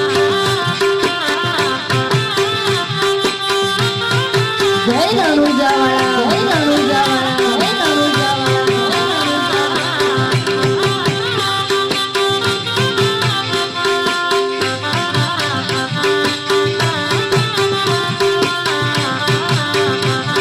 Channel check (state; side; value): identical; both; correlation 1.00